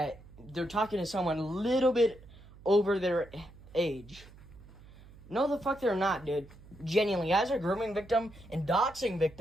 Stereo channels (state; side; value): noise; right; hum, 21 dB below the sound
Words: they're talking to someone a little bit over their age. No, the fuck they're not, dude. Genuinely, as a grooming victim and doxing